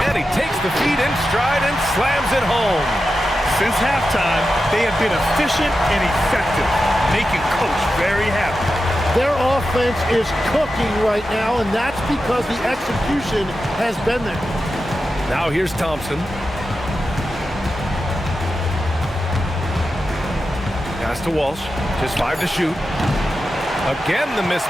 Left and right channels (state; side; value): normal; both; correlation 0.90